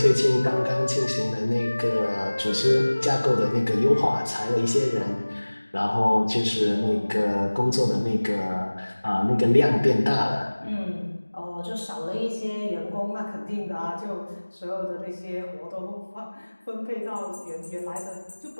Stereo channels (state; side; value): inverted; both; correlation -1.00